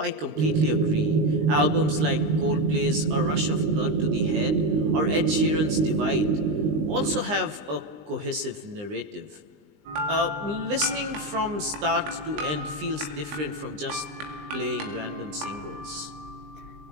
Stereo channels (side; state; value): left; late; 20 ms